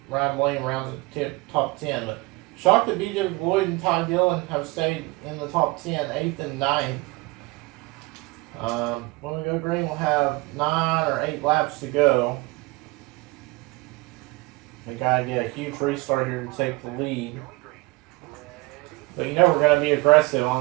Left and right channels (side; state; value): left; quieter; 24.0 dB